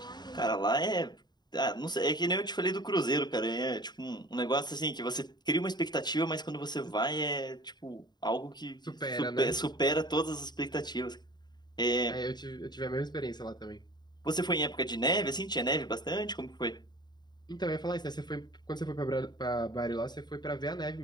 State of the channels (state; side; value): late; right; 0.20 ms